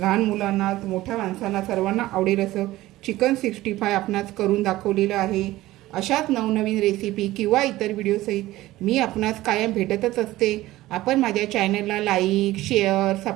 मुलांना, मोठ्या माणसांना सर्वांना आवडेल असं चिकन 65 आपणास करून दाखवलेलं आहे. अशाच नवनवीन रेसिपी किंवा इतर व्हिडिओसहित मी आपणास कायम भेटतच असते. आपण माझ्या चॅनलला लाईक, शेअर,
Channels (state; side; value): quieter; left; 16.7 dB